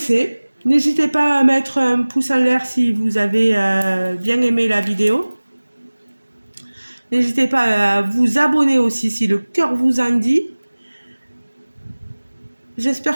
N'hésitez pas à mettre un pouce en l'air si vous avez bien aimé la vidéo. N'hésitez pas à vous abonner aussi si le cœur vous en dit.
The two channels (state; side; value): inverted; both; correlation -1.00